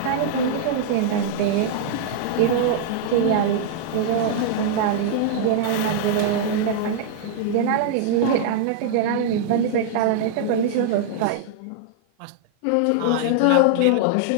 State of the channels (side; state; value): both; different; correlation -0.01